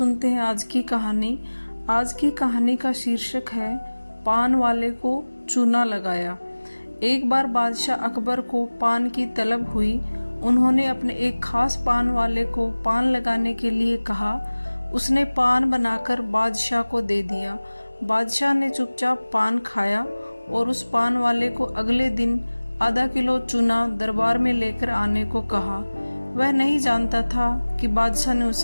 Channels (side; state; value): both; inverted; correlation -1.00